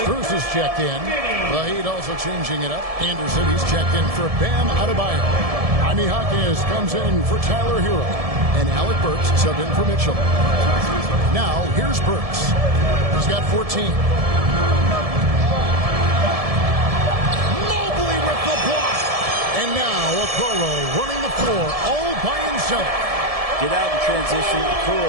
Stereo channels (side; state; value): left; late; 1.7 ms